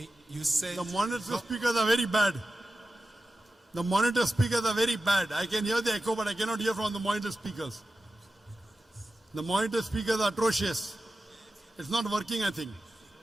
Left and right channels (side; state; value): both; normal; correlation 0.93